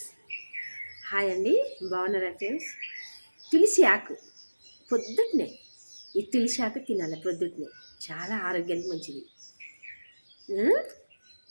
Hi అండి. బాగున్నారా ఫ్రెండ్స్? తులసి ఆకు పొద్దున్నే ఈ తులసి ఆకు తినాలి పొద్దున్నే. చాలా ఆరోగ్యానికి మంచిది.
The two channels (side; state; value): both; inverted; correlation -1.00